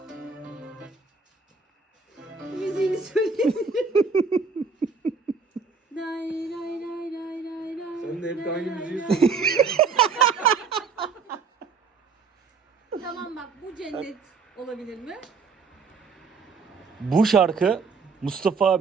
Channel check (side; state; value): left; quieter; 5.0 dB